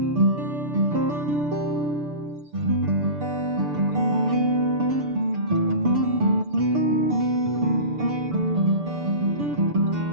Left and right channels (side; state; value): left; late; 6.8 ms